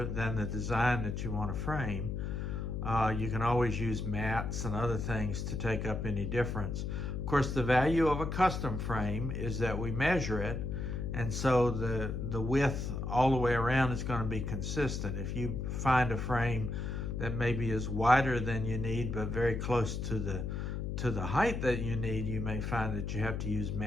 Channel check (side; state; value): left; noise; hum, 3 dB below the sound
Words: than the design that you want to frame. You can always use mats and other things to take up any difference. Of course, the value of a custom frame is that we measure it, and so the width all the way around is going to be consistent. If you find a frame that maybe is wider than you need but very close to the height that you need, you may find that you have to use